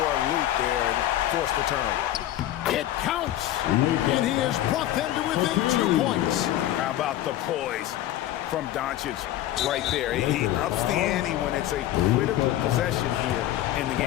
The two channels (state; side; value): quieter; right; 13.5 dB